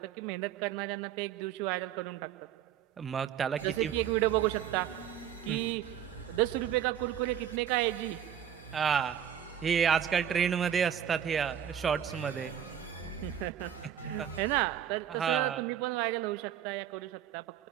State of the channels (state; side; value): quieter; left; 9.6 dB